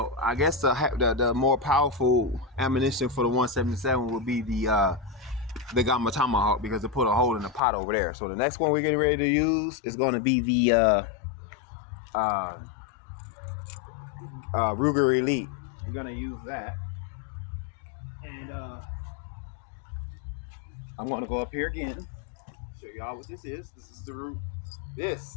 I guess the more powerful ammunition for the 177 would be the Gamma Tomahawk, because it put a hole in the pot over there. So the next one we're getting ready to use is going to be the Ruger Elite. We're gonna use that, and I'm gonna go up here again. Show y'all what this is. This is the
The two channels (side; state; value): right; drops out; at 7.6 s